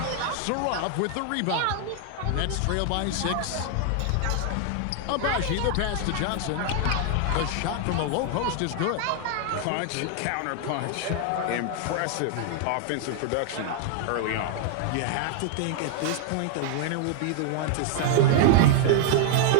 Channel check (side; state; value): both; different; correlation 0.00